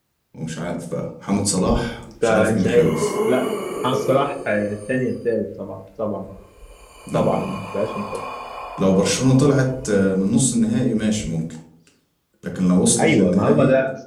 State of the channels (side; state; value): both; identical; correlation 1.00